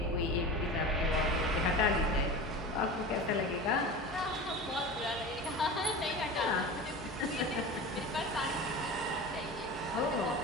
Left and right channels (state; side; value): normal; both; correlation 0.31